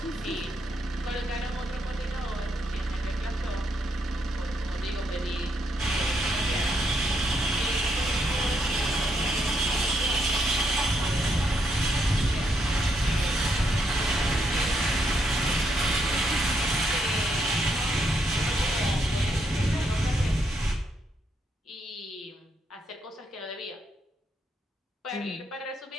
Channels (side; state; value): both; normal; correlation 0.77